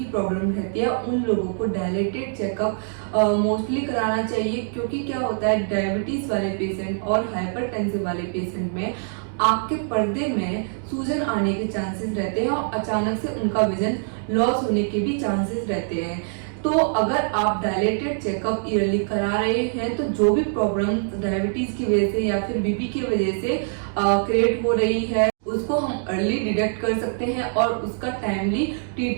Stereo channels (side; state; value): left; silent; digital silence